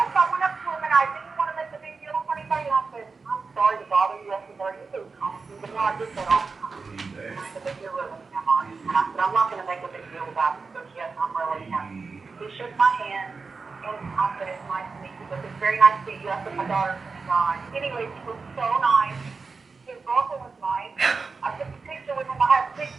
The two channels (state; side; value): quieter; left; 4.5 dB